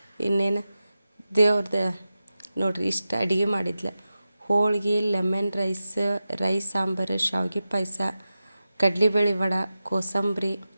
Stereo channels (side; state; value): both; inverted; correlation -0.93